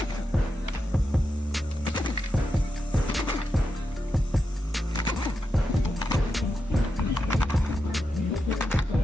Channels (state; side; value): normal; both; correlation 0.87